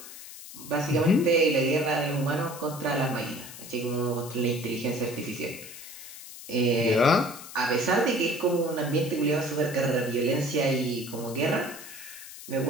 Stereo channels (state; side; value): noise; left; hiss, 14 dB below the sound